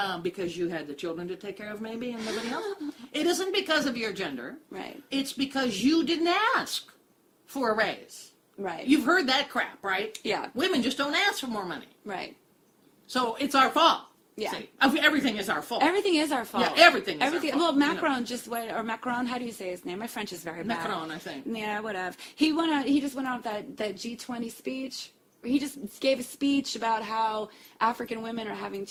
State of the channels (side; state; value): both; identical; correlation 1.00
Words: Because you had the children to take care of maybe and nobody else. It isn't because of your gender. Right. It's because you didn't ask for a raise. Right. You've heard that crap, right? Yeah. Women just don't ask for more money. Right. So it's our fault. Yeah. See, everything is our fault. Everything is our fault. Yeah, everything is our fault. Well, You know. Macron just went, or Macron, how do you say his name? My French is very bad. Macron, I think. Yeah, whatever. He just went out with that G20 speech. He just gave a speech about how African women are having